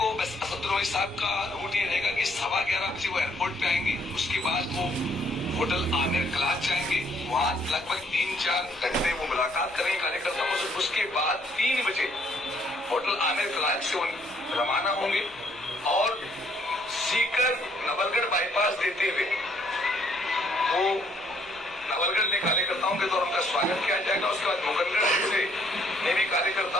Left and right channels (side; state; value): both; normal; correlation 0.66